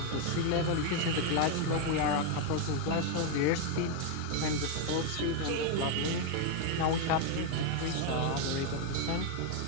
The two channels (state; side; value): different; both; correlation 0.01